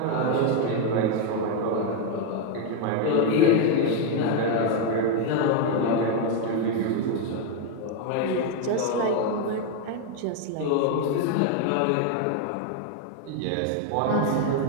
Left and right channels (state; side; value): different; both; correlation 0.01